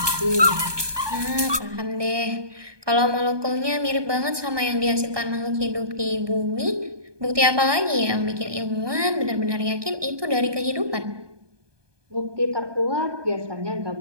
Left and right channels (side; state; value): left; late; 1.2 ms